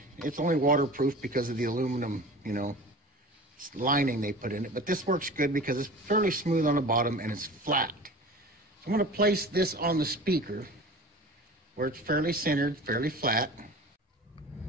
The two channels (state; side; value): normal; both; correlation 0.38